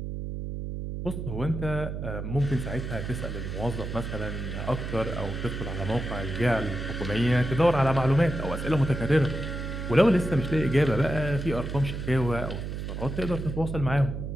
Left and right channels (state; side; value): noise; right; hum, 5 dB below the sound